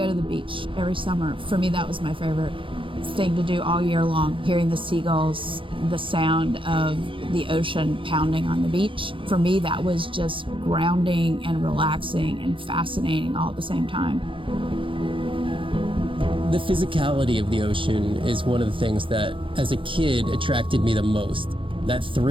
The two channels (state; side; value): late; left; 0.25 ms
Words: to the beach every summer. For me, that was my favorite thing to do all year long, hearing the seagulls, the sound of the ocean pounding on the beach. For me, that was just grounding and relaxing and fascinating all at the same time. The physicality of the ocean is one of the things that, as a kid, attracted me the most. That